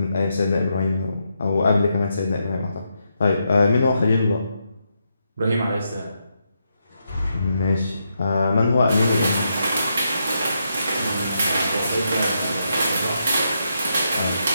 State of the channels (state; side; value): inverted; both; correlation -0.82